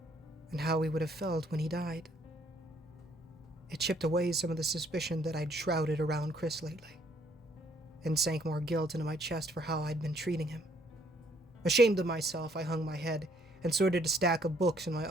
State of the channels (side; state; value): both; normal; correlation 0.66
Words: and how he would have felt when he died. It chipped away some of the suspicion that I'd shrouded around Chris lately, and sank more guilt into my chest for how I'd been treating him. Ashamed of myself, I hung my head and sorted a stack of books in my